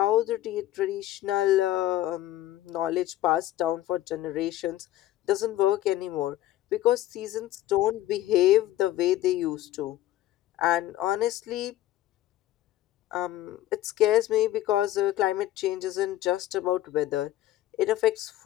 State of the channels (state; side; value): quieter; right; 14.2 dB